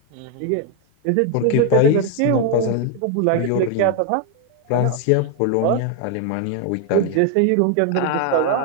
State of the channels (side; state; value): both; different; correlation 0.01